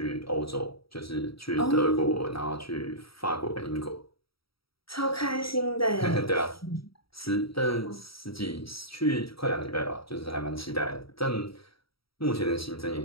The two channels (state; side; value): late; right; 0.75 ms